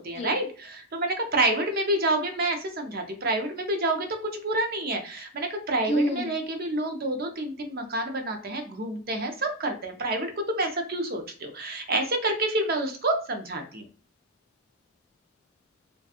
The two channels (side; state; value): both; normal; correlation -0.02